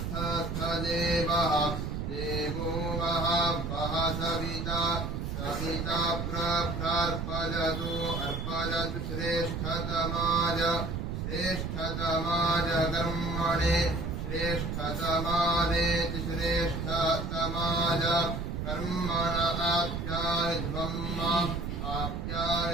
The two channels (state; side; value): noise; right; rumble, 3 dB below the sound